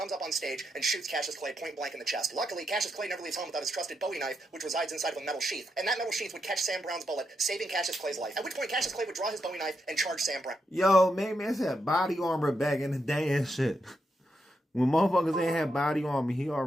up on stage and shoots Cassius Clay point blank in the chest. Luckily, Cassius Clay never leaves home without his trusted Bowie knife, which resides inside of a metal sheath. And that metal sheath would catch Sam Brown's bullet, saving Cassius Clay's life. At which point, Cassius Clay would draw his Bowie knife and charge Sam Brown. Yo, man, it's that body armor back in the day and shit. When motherfuckers ain't had body armor, he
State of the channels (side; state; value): both; normal; correlation 0.83